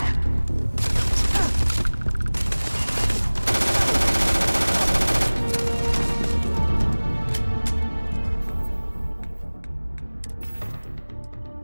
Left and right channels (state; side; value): inverted; both; correlation -1.00